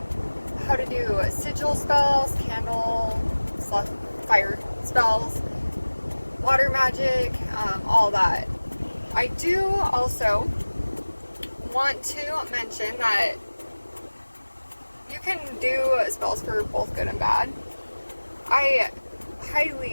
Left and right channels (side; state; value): both; inverted; correlation -1.00